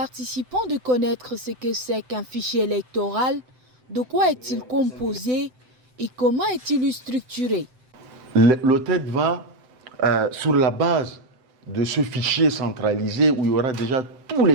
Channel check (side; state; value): left; late; 7.8 ms